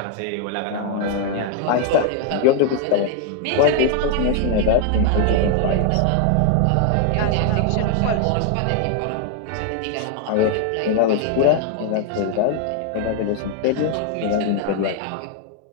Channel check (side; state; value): both; different; correlation 0.00